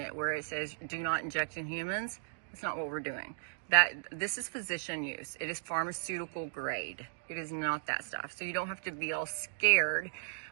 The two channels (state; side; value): silent; left; digital silence